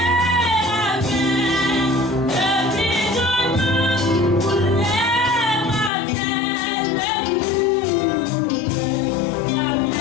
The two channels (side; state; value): right; drops out; at 5.9 s